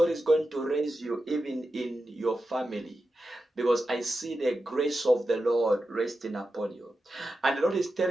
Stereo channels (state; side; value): normal; both; correlation 0.90